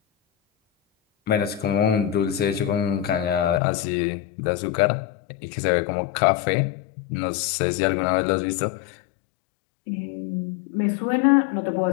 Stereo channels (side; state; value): right; drops out; at 3.6 s